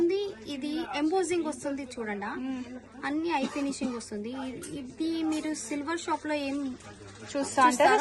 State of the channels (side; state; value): both; identical; correlation 1.00